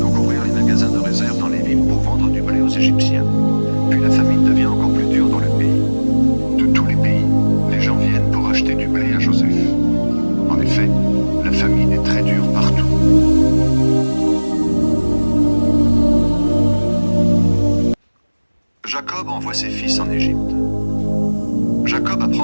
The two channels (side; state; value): both; inverted; correlation -1.00